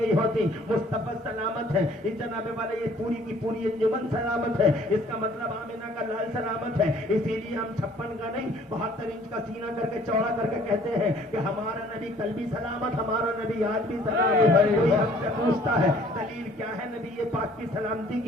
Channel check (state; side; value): normal; both; correlation 0.56